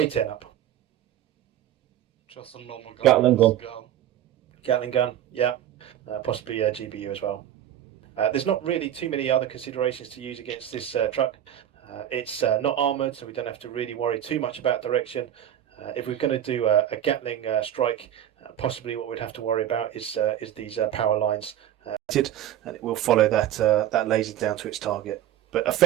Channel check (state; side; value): quieter; left; 11.3 dB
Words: up. Just a normal gun. Gatling gun. Gatling gun, yeah. Possibly a GBU as well. There's not really too many other considerations to use against this truck. It's not armoured, so we don't have to really worry too much about direction. If we're going to do a Gatling strike, possibly what we'd have to worry about is these power lines, and it will follow that laser down to its target. But